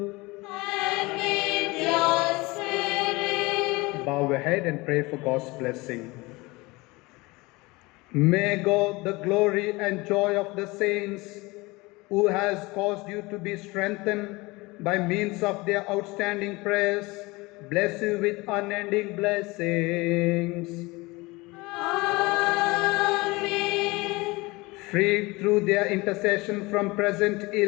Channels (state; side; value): quieter; right; 23.1 dB